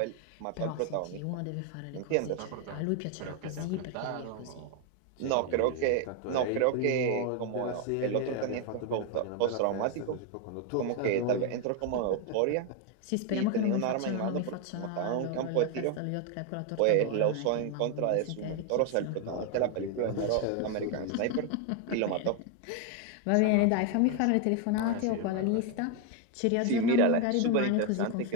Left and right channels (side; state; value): both; different; correlation 0.01